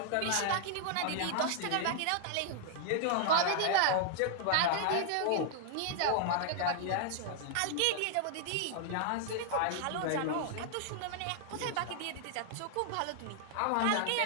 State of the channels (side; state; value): both; different; correlation 0.00